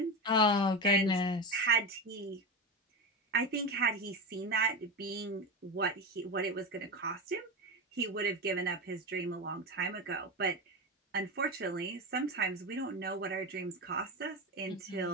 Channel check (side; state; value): both; normal; correlation 0.19